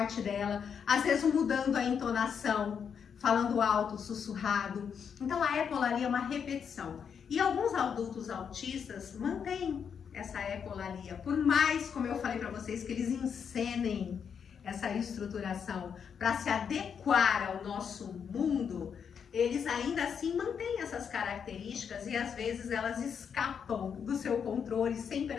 dela, às vezes mudando a entonação, falando alto, sussurrado. Então a ecolalia é uma repetição. E alguns adultos autistas mantêm essa ecolalia, por mais, como eu falei para vocês, que eles encenem essa estruturação para se adequar ao nosso mundo, eles ainda assim mantêm essas características e às vezes elas escapam do seu controle sem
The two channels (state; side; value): quieter; right; 7.1 dB